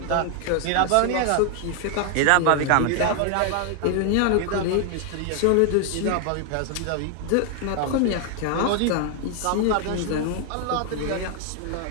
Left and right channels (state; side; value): different; both; correlation 0.00